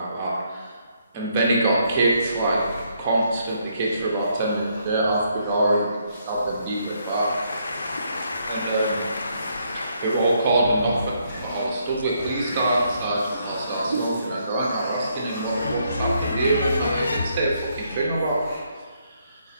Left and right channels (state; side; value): inverted; both; correlation -0.73